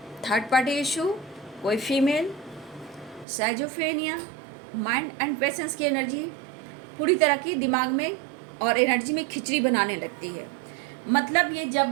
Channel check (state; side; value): drops out; left; at 3.2 s